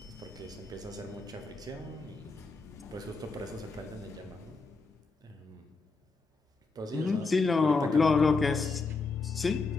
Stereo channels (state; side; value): quieter; right; 4.0 dB